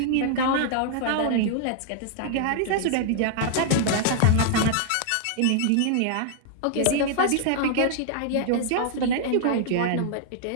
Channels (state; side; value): different; both; correlation -0.01